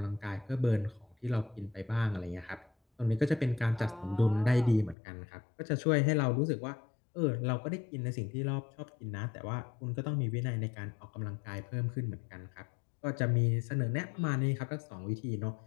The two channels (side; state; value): right; drops out; at 5.0 s